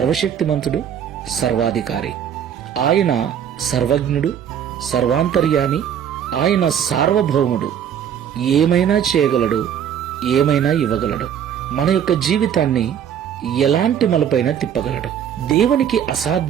సర్వాధికారి. ఆయన సర్వజ్ఞుడు, సర్వాంతర్యామి. ఆయన సార్వభౌముడు. ఏమైనా చేయగలడు, ఏమైనా ఇవ్వగలడు. మన యొక్క జీవితాన్ని ఎలాంటి మలుపైనా తిప్పగలడు. దేవునికి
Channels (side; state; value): left; quieter; 8.9 dB